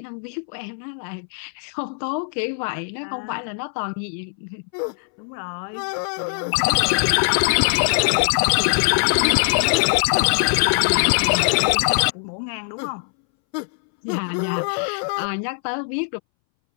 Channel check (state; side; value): silent; right; 63 dB below the other